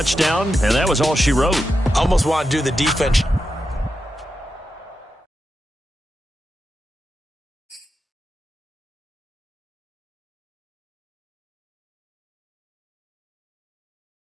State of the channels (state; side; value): normal; both; correlation 0.88